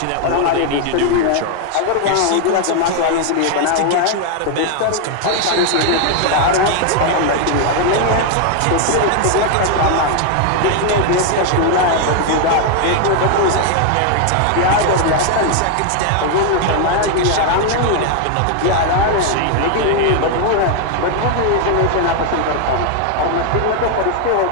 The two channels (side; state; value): both; different; correlation 0.00